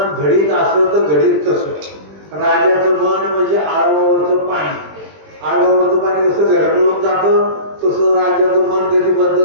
घडीत असं तर घडीत तसं. राजाचं मन म्हणजे आळवावरचं पाणी. आळवावरचं पाणी कसं घरगळून जातं, तसं राजाचं मन कधी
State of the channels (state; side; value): late; left; 20 ms